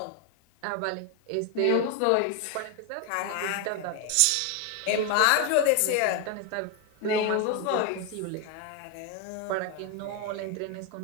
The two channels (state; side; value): different; both; correlation 0.01